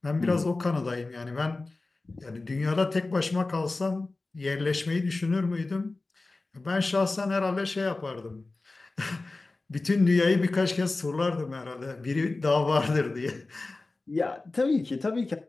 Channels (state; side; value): quieter; right; 3.3 dB